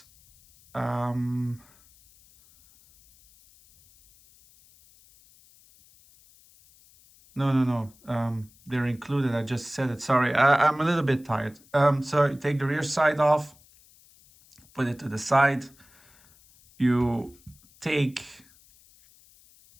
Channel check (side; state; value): left; noise; hiss, 28 dB below the sound